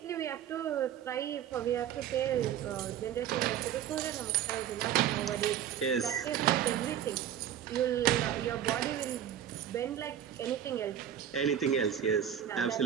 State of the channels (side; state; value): left; quieter; 10.0 dB